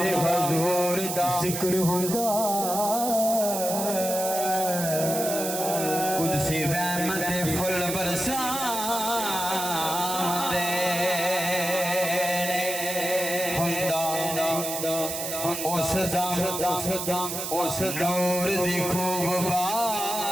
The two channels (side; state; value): right; noise; hiss, 4 dB below the sound